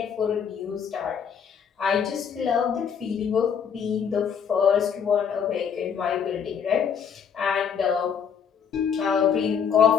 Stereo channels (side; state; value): right; quieter; 7.3 dB